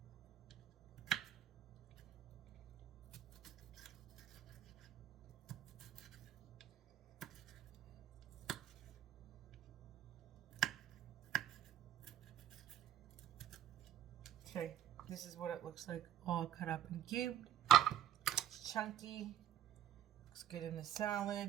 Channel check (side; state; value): left; quieter; 10.8 dB